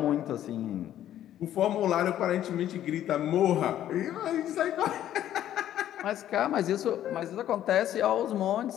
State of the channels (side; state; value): right; quieter; 11.8 dB